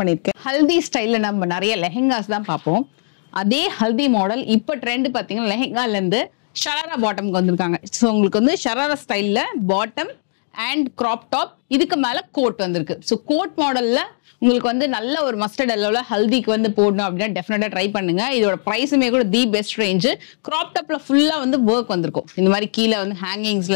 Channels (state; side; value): silent; right; digital silence